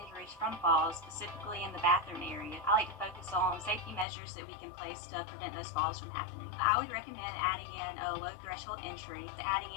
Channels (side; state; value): right; drops out; at 4.0 s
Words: from falls, specifically in the bathroom area. I like to focus on safety measures that we can place to prevent those falls from happening. I would recommend adding in a low threshold entry, adding